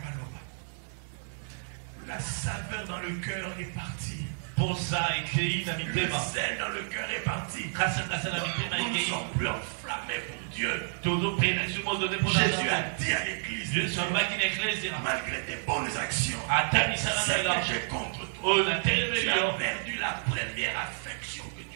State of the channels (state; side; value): silent; left; digital silence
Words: La saveur dans le cœur est partie. Le sel dans le cœur est parti. Nous ne sommes plus enflammés pour Dieu. Jésus a dit à l'église, malgré tes bonnes actions, c'est que j'ai contre toi. Tu as perdu la première affection que